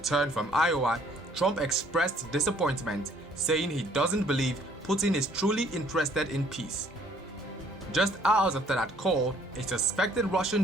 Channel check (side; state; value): both; normal; correlation 0.61